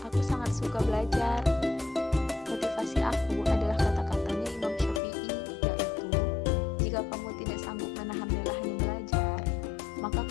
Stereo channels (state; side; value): drops out; right; at 5.0 s